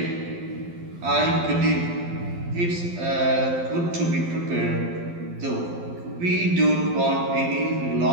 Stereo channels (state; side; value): late; left; 12 ms